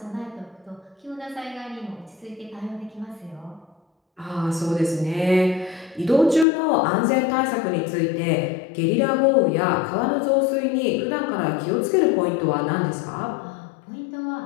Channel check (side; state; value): right; drops out; at 6.5 s